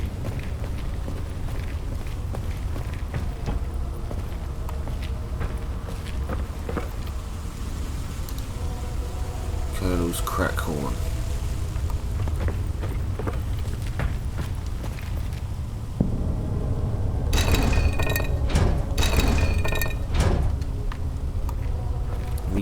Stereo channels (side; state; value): both; identical; correlation 1.00